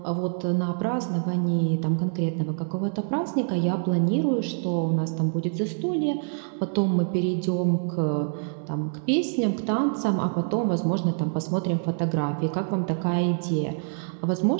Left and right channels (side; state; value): left; silent; digital silence